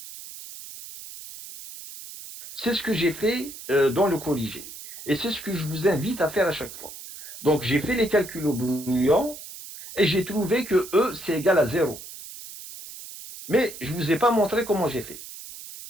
C'est ce que j'ai fait dans le corrigé. Et c'est ce que je vous invite à faire à chaque fois. Donc, j'ai fait les calculs au brouillon et j'ai trouvé que E, c'est égal à 0. Mais je ne vous ai pas montré comment j'ai fait.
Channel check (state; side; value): noise; right; hiss, 13 dB below the sound